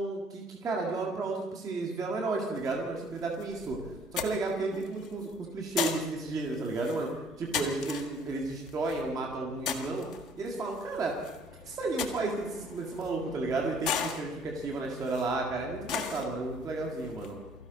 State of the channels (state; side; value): normal; both; correlation 0.59